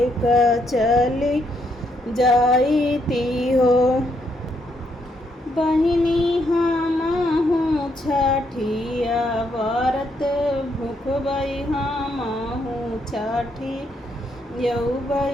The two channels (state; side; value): normal; both; correlation 0.75